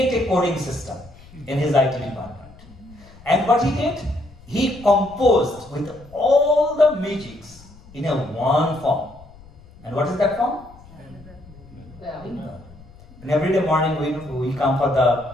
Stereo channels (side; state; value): left; noise; rumble, 22 dB below the sound